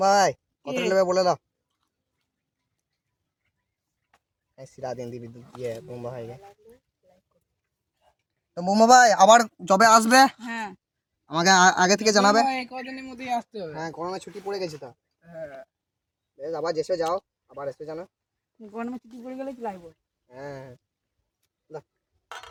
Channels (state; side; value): identical; both; correlation 1.00